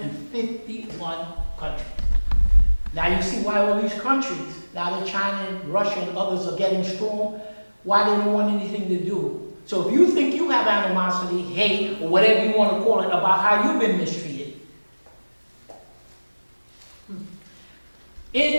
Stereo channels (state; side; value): inverted; both; correlation -1.00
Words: countries. Now you see why all these countries, now that China and Russia and others are getting strong, why they don't want anything to do. So if you think you have animosity, hate, or whatever you want to call it, about how you've been mistreated,